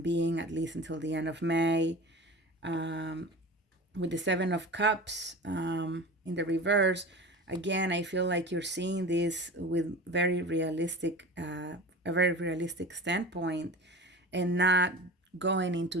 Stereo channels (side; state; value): both; normal; correlation 0.34